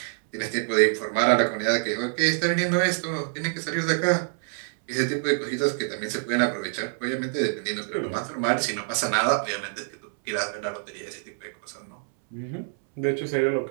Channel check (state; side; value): silent; left; 61 dB below the other